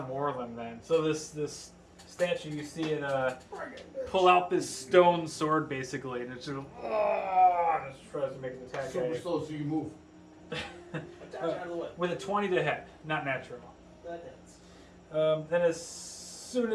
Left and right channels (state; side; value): identical; both; correlation 1.00